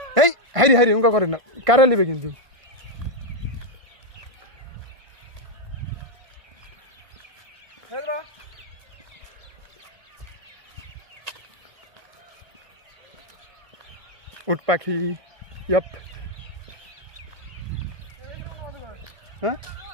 এই হাইরি উঙ্কা করেন না, কারা নিবে কিন্তু। উট পাখি, ইয়াপ। হ্যাঁ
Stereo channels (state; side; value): late; left; 1.5 ms